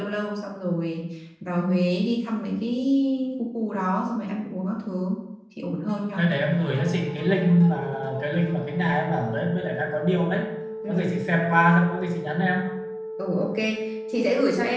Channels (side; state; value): both; identical; correlation 1.00